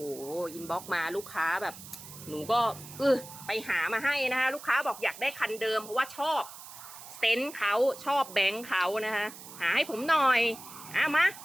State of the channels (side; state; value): right; noise; hiss, 15 dB below the sound